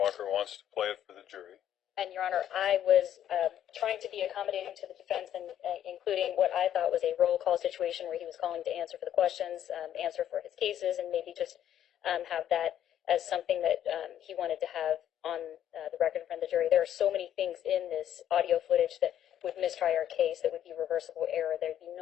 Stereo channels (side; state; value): right; quieter; 10.8 dB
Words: wants to play it for the jury. And, Your Honor, I was trying to be accommodating to the defense, and including what I thought was a roll call situation where he was calling to answer for the questions, answer for his cases, and maybe just have that as something that he wanted to have on the record in front of the jury. There are so many things in this audio footage that would mistry our case, that would be reversible error. There'd be